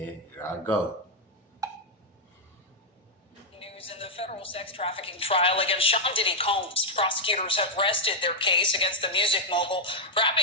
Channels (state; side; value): normal; both; correlation -0.02